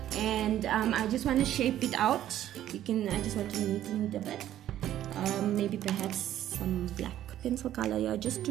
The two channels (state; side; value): quieter; left; 12.2 dB